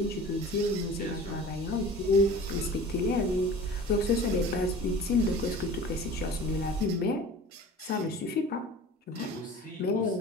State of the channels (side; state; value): both; normal; correlation 0.40